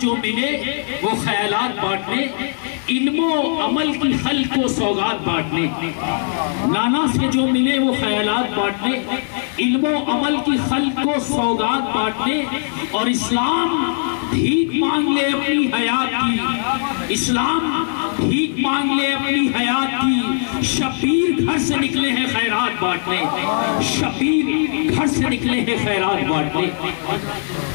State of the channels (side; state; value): right; silent; digital silence